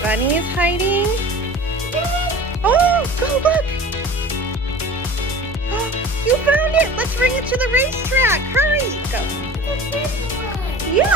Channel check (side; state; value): both; normal; correlation 0.39